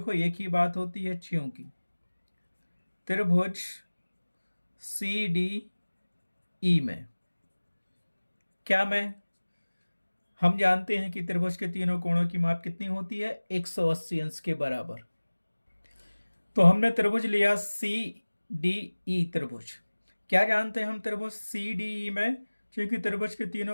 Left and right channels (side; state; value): both; inverted; correlation -1.00